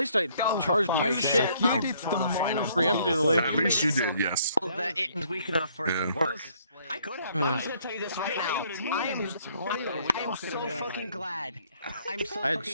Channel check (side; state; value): both; inverted; correlation -0.64